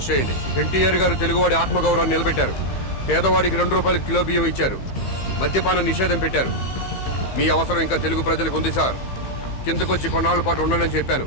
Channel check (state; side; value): late; right; 15 ms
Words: చేయండి. ఎన్టీఆర్ గారు తెలుగువాడి ఆత్మగౌరవాన్ని నిలబెట్టారు. పేదవాడికి 2 రూపాయలు కిలో బియ్యం ఇచ్చారు. మద్యపాన నిషేధం పెట్టారు. మీ అవసరం ఇంకా తెలుగు ప్రజలకు ఉంది సార్. కిందకొచ్చి కొన్నాళ్ళ పాటు ఉండాలని చెప్పాను,